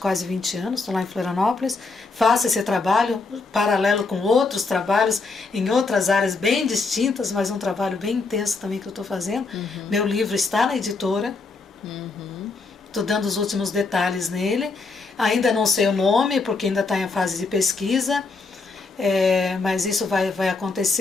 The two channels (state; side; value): quieter; right; 4.0 dB